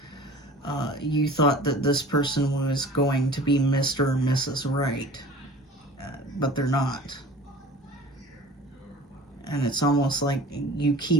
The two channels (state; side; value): normal; both; correlation 0.43